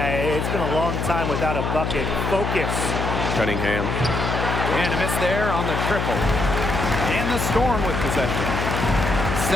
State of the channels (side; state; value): left; noise; hum, 1 dB below the sound